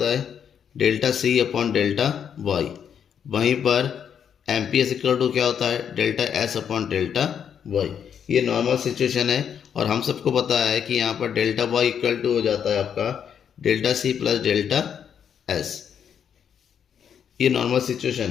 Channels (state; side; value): quieter; right; 8.1 dB